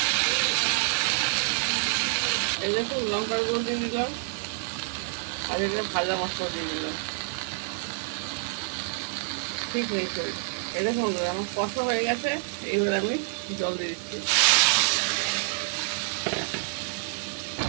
এই দেখুন লঙ্কার গুঁড়ো দিয়ে দিলাম, আর এটা ভাজা মশলা দিয়ে দিলাম। ঠিক নেই শরীর। এই দেখুন বন্ধুরা আমার কষা হয়ে গেছে। এইবার আমি জল দিয়ে দিচ্ছি।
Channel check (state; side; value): silent; left; 60 dB below the other